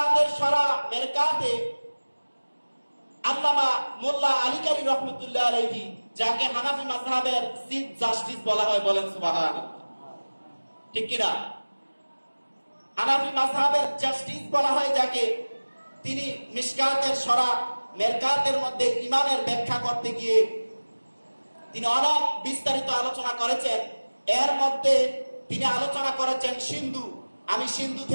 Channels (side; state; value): both; inverted; correlation -1.00